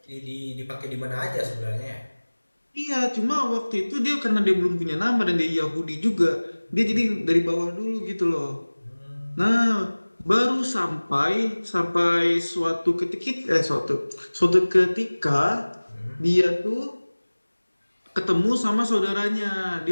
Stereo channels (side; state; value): both; inverted; correlation -1.00